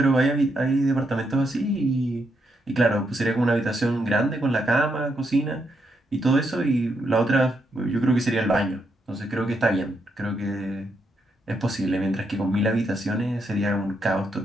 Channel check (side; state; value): both; normal; correlation 0.79